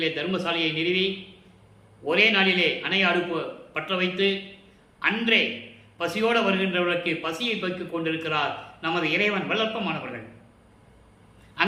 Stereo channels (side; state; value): both; identical; correlation 1.00